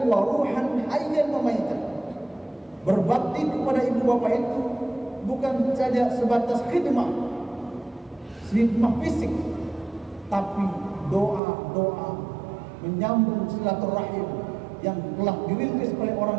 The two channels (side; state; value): left; drops out; at 11.4 s